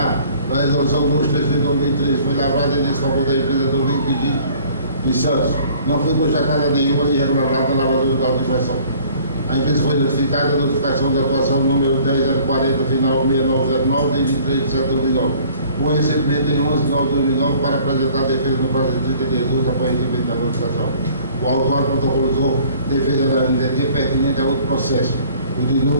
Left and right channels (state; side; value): inverted; both; correlation -0.53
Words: da resolução 233 de 2003, foi lavrada em desfavor da empresa do Vídeo em Santos. Não foi constatada nenhuma irregularidade na lavadora do auto de infração. A empresa foi notificada, a notificação da atuação número 10040, final 6909, de 23 de setembro de 2009, com recebimento em 11 de 9 de 2009 para apresentar a defesa no prazo de 30 dias úteis após recebimento da notificação. O autor protocolizou defesa da NDT pertinente a outro processo, o de